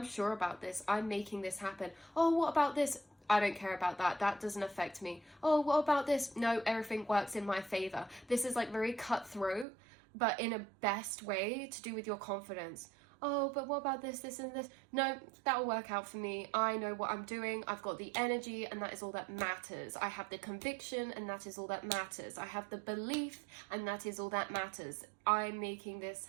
sure about this. I'm making this happen. Oh, what about this? I don't care about that. That doesn't affect me. Oh, what about this? No, everything works in my favor. This is like very cutthroat, but in a best way to do with your confidence. Oh, but what about this, this, and this? No, that'll work out for me. I know what I'm doing. I've got the energy, and that is all that matters. I have the conviction, and that is all that matters. I have the belief, and that is all that matters. I'm making this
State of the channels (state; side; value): drops out; left; at 9.7 s